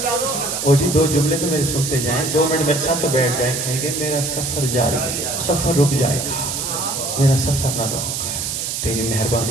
او جی دو جملے تو میرے سنتے جائیں، 2 منٹ میرے ساتھ تو بیٹھ جائیں، کہیں گے میرا سفر جاری ہے، سفر رک جائے گا، میرا سفر نہ رکے، تیری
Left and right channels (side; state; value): right; noise; hiss, 3 dB below the sound